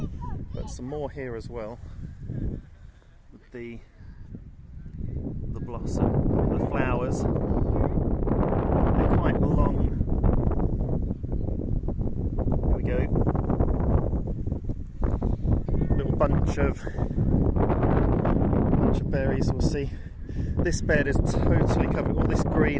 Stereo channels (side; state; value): both; identical; correlation 1.00